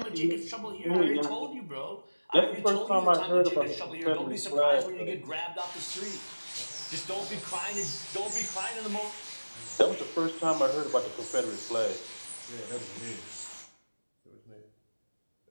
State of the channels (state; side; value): inverted; both; correlation -1.00